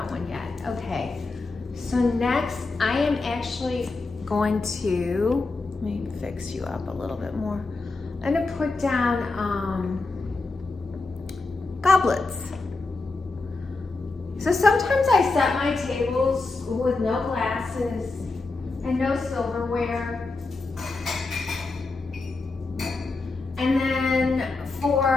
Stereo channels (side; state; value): right; quieter; 3.6 dB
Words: one yet. Okay, so next I am actually going to, let me fix you up a little bit more. I'm gonna put down goblets. So sometimes I set my tables with no glasses and no silverware. And then